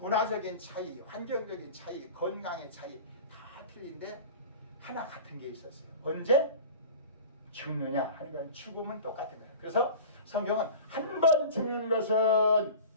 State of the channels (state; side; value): inverted; both; correlation -0.37